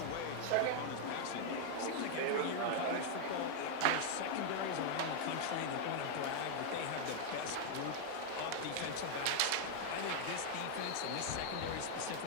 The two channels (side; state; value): both; different; correlation 0.00